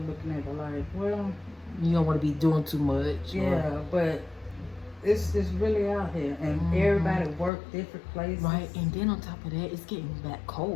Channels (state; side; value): drops out; right; at 7.5 s